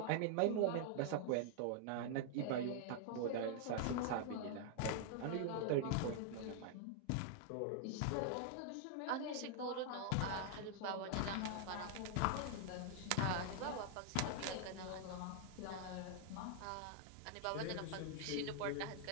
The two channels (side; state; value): both; different; correlation 0.00